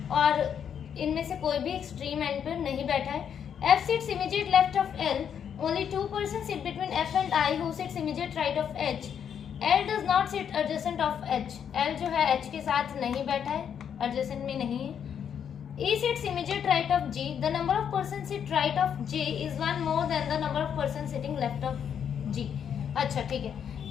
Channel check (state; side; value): quieter; right; 8.2 dB